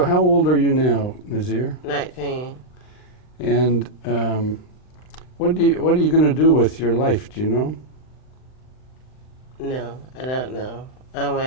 how old are you now, Nazir? 19. And what are you going to do with your life? Do you know? No, I don't know. I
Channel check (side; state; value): right; late; 39 ms